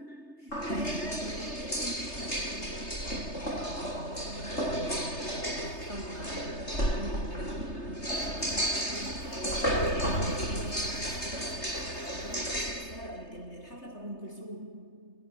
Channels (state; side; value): late; right; 3.3 ms